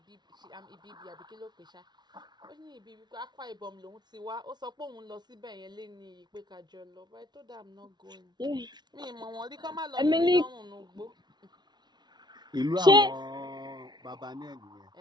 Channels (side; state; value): left; late; 0.20 ms